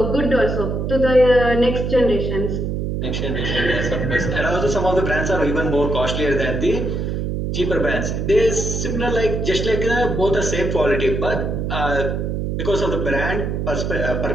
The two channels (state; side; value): noise; right; hum, 2 dB below the sound